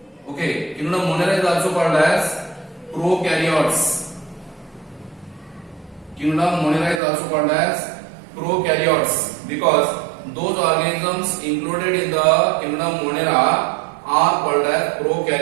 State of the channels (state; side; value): drops out; left; at 7.0 s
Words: Okay, Kingdom Monera is also called as prokaryotes. Kingdom Monera is also called as prokaryotes because those organisms included in the Kingdom Monera are called as